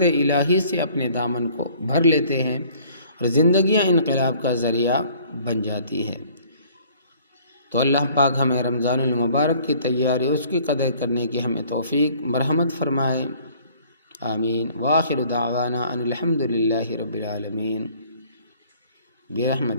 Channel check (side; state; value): both; inverted; correlation -0.56